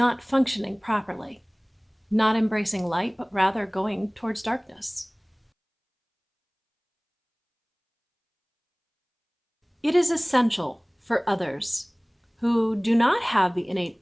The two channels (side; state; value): both; identical; correlation 1.00